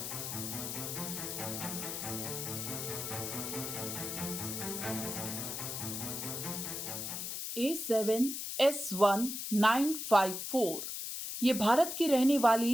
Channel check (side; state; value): left; noise; hiss, 5 dB below the sound